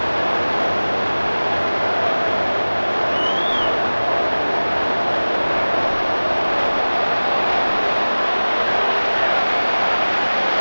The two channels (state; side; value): inverted; both; correlation -1.00